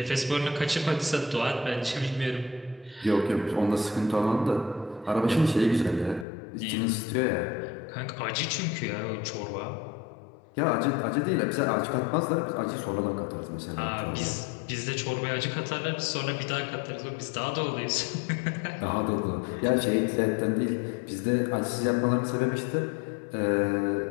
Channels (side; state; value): right; drops out; at 6.2 s